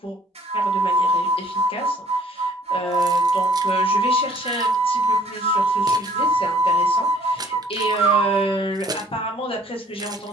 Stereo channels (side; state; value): both; normal; correlation 0.57